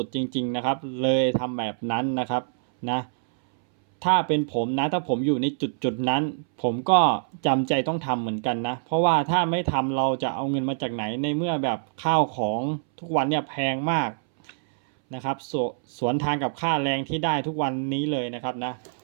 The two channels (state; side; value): silent; left; 61 dB below the other